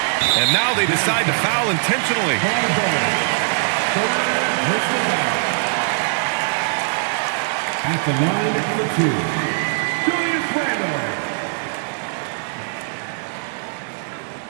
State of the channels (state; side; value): silent; left; digital silence